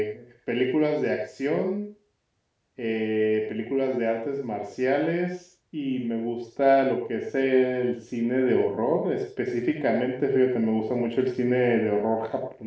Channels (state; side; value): identical; both; correlation 1.00